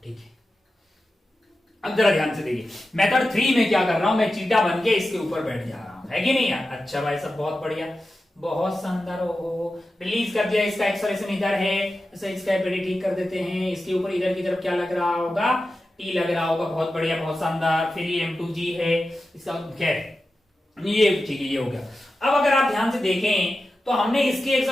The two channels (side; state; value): both; normal; correlation 0.92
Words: ठीक है। अब जरा ध्यान से देखिए, मेथड 3 में क्या कर रहा हूं मैं? चीटा बन के इसके ऊपर बैठ जा रहा हूं, है कि नहीं यार? अच्छा भाई सब बहुत बढ़िया, बहुत शानदार। हो रिलीज कर दिया। इसका एक्सेलरेशन इधर है, इसका पेड़ी ठीक कर देते हैं। इसके ऊपर इधर की तरफ क्या लग रहा होगा? T लग रहा होगा। बहुत बढ़िया, बहुत शानदार। फिर ये M2G है इसका, खैर ये ठीक है, ये हो गया। अब अगर आप ध्यान से देखें तो हमने इसकी